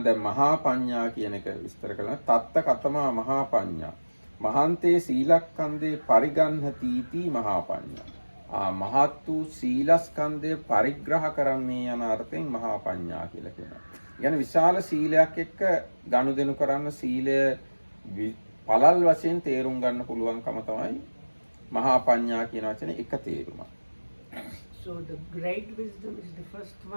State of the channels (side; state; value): both; inverted; correlation -1.00